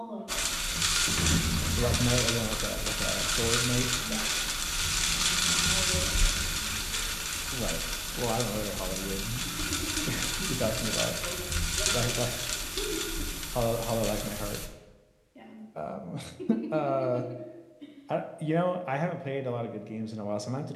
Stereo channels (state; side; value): identical; both; correlation 1.00